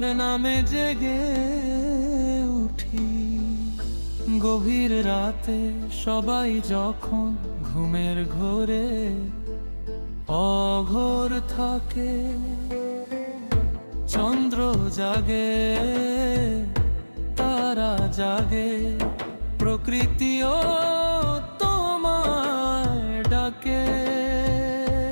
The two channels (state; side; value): inverted; both; correlation -1.00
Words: নামে জেগে উঠি। গভীর রাতে সবাই যখন ঘুমের ঘোরে অঘোর থাকে, চন্দ্র জাগে তারা জাগে, প্রকৃতিও তোমায় ডাকে।